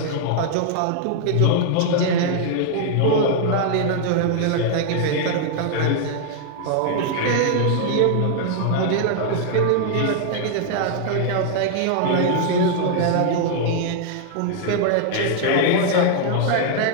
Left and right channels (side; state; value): both; different; correlation 0.00